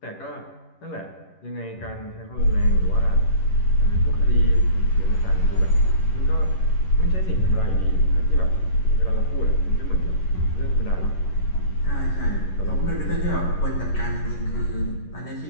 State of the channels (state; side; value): late; right; 11 ms